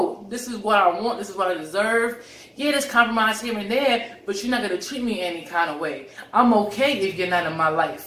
this is what I want. This is what I deserve. Yeah, there's compromise here and there, but you're not going to treat me any kind of way. I'm okay if you're not in my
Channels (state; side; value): identical; both; correlation 1.00